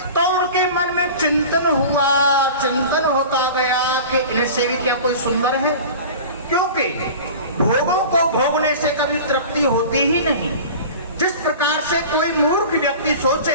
तो उनके मन में चिंतन होता गया कि इनसे भी क्या कोई सुंदर है, क्योंकि भोगों को भोगने से कभी तृप्ति होती ही नहीं। जिस प्रकार से कोई मूर्ख व्यक्ति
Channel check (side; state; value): both; inverted; correlation -0.37